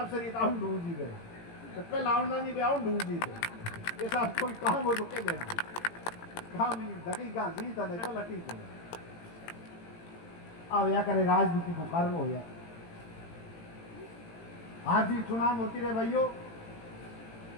ये ताऊ डूजी गए तो पहले आउंडा नहीं बे आउं डूजी गए ये साहब कोई काम हो तो कह देना काम ही दकीका जीता नहीं तो लकी को अब या करे राजनीति को कारण हो या आज भी चुनाव होती रहे भाइयों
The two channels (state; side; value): late; right; 18 ms